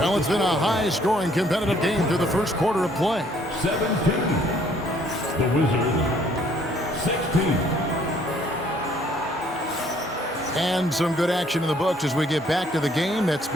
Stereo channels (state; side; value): normal; both; correlation 0.63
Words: it's been a high-scoring, competitive game through the first quarter of play. 17. The Wizards, 16. And some good action in the books as we get back to the game that's